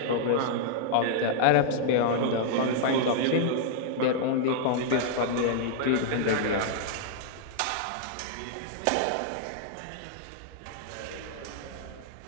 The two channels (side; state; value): both; different; correlation -0.01